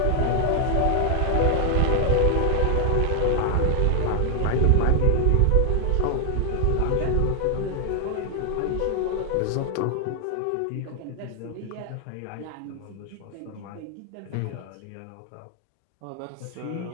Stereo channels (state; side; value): different; both; correlation 0.00